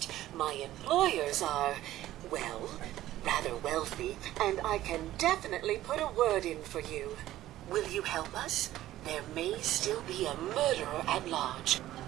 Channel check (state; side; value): quieter; left; 14.4 dB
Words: my employers are, well, rather wealthy, and I can definitely put a word in for you. Will you help us? There may still be a murderer at large.